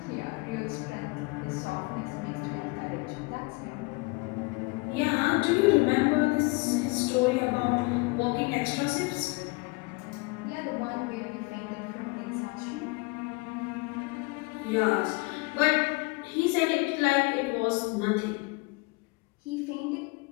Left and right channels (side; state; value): right; quieter; 27.4 dB